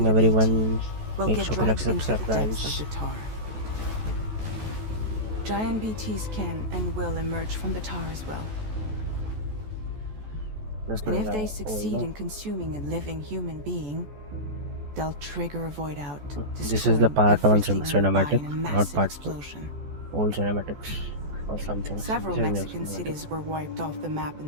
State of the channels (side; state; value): left; late; 14 ms